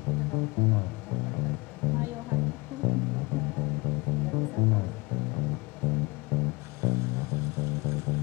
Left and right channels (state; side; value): quieter; right; 25.4 dB